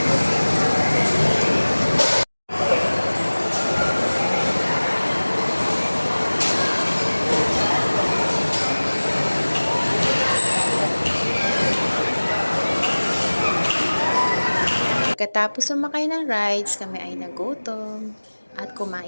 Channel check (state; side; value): inverted; both; correlation -1.00